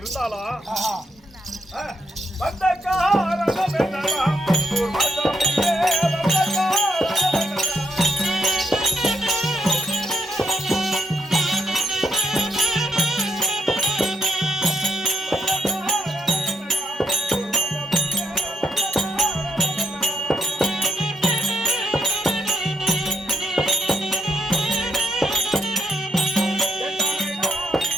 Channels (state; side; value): normal; both; correlation 0.79